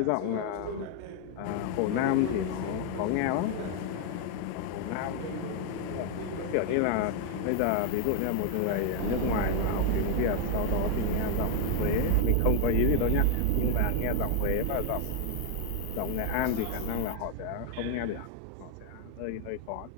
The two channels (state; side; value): different; both; correlation 0.00